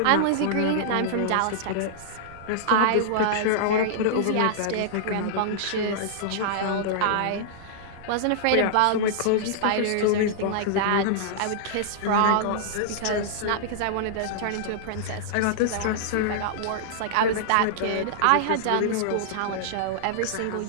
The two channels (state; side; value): different; both; correlation -0.02